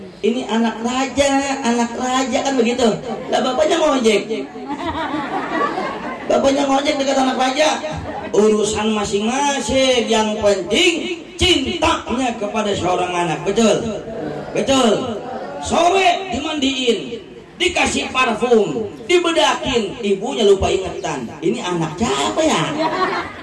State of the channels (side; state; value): both; identical; correlation 1.00